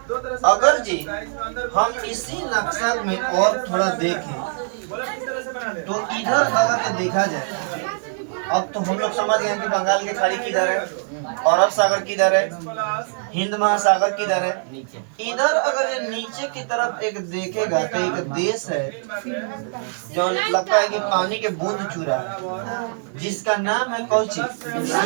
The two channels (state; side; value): silent; left; 58 dB below the other